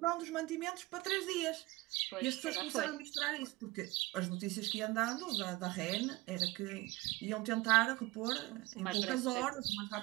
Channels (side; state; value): left; quieter; 21.4 dB